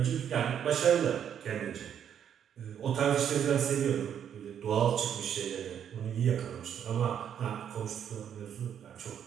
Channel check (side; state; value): left; quieter; 8.9 dB